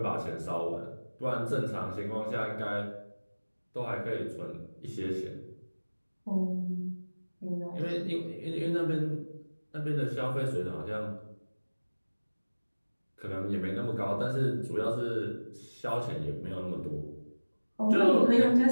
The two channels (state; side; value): inverted; both; correlation -1.00